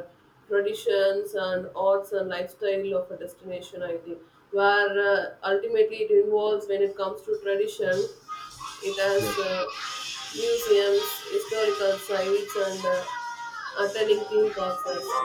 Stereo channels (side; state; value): both; identical; correlation 1.00